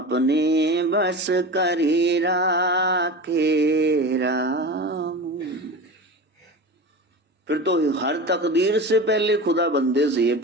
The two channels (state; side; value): normal; both; correlation 0.29